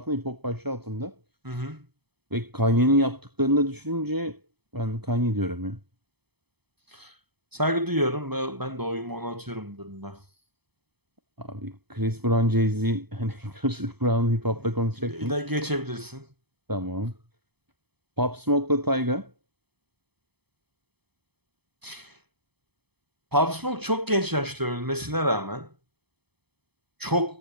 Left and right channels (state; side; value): late; left; 0.98 ms